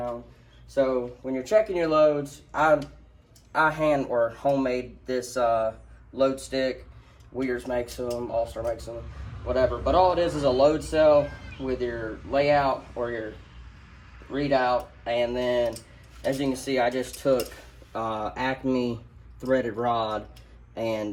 So when you're checking your loads, I hand or homemade this load stick. Weir's makes them, All-Star makes them, whatever. But all it is a load cell with your layout or your readout, and then as you can see, I just took Acme threaded rod and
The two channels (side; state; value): both; identical; correlation 1.00